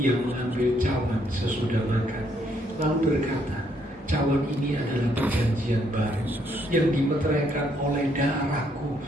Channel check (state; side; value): normal; both; correlation 0.71